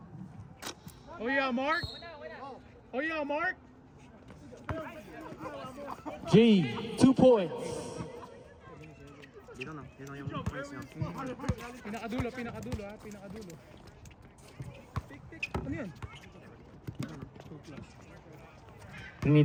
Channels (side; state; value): both; identical; correlation 1.00